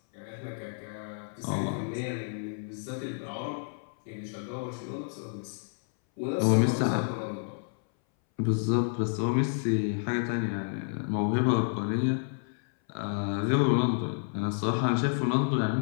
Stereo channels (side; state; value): right; silent; 58 dB below the other